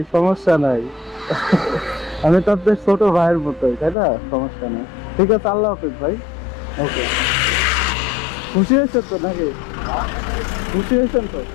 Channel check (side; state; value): right; drops out; at 4.0 s